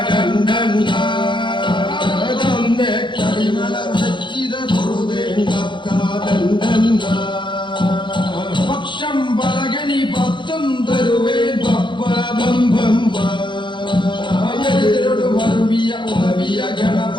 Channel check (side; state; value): right; late; 0.23 ms